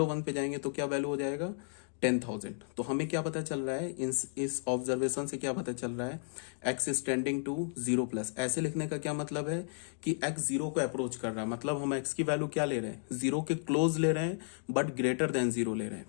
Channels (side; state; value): right; silent; digital silence